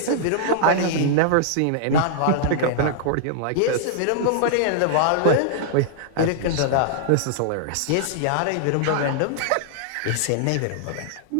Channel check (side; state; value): both; different; correlation -0.01